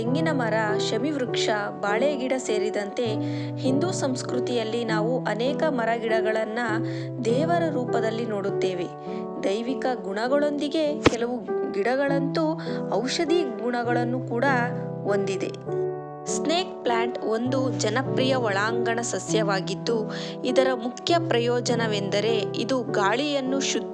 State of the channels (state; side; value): identical; both; correlation 1.00